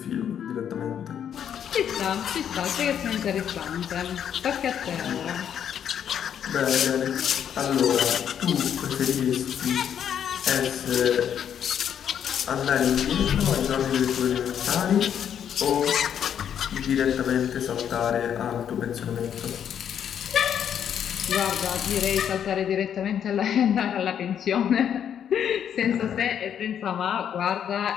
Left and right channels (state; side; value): quieter; right; 8.9 dB